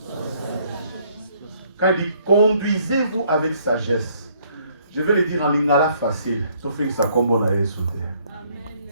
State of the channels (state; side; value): inverted; both; correlation -0.66